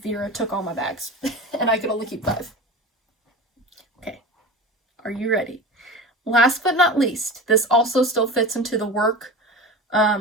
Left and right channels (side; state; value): both; normal; correlation 0.31